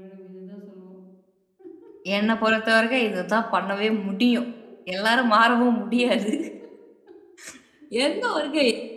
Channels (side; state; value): both; identical; correlation 1.00